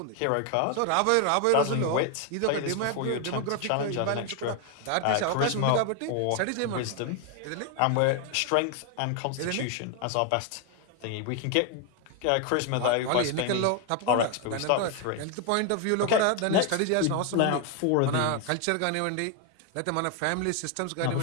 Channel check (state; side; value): different; both; correlation 0.01